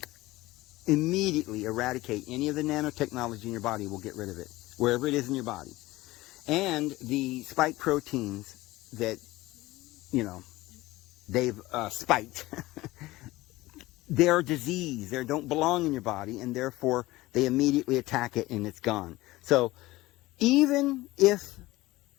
immediately eradicate any of the nanotechnology in your body. Will get rid of it, wherever it is in your body. And the spike proteins that, they've spiked, they're disease. They don't belong in your body, and therefore they immediately attack it and it's gone. So even if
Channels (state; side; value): quieter; right; 18.8 dB